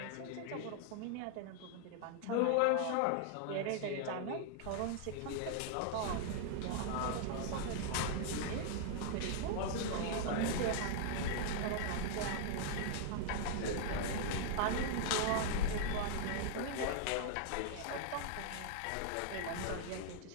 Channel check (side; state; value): both; different; correlation -0.01